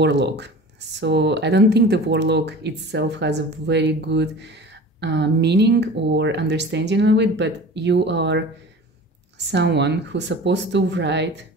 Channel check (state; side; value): normal; both; correlation 0.38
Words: So I don't think the warlock itself has a very good meaning or understanding of it, but you are someone who's supposed to write,